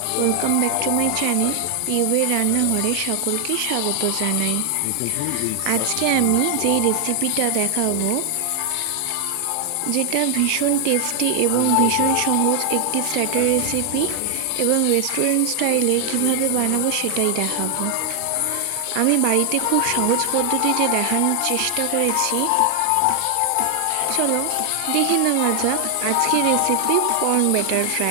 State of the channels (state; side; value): different; both; correlation 0.00